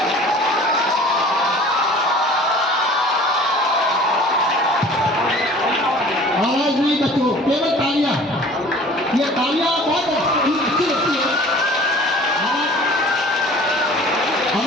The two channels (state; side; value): normal; both; correlation 0.46